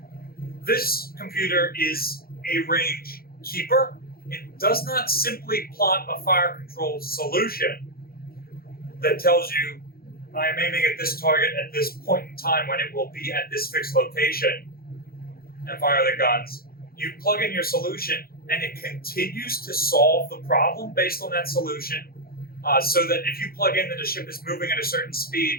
This computer is a range keeper. It does not simply plot a fire control solution that tells you, I am aiming at this target at this point in time when it will be at this fixed location, and fire the guns. You plug in your solution and it continues to solve the problem based on that solution, so that if you plug in that a ship is moving at a certain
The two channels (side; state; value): right; late; 0.44 ms